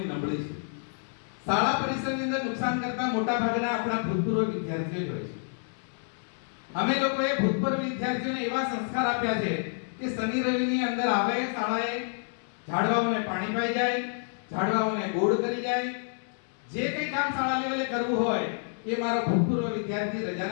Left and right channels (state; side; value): silent; right; digital silence